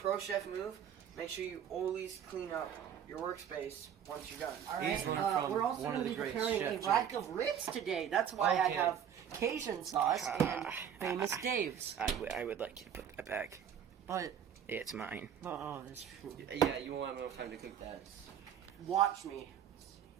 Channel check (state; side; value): quieter; left; 8.8 dB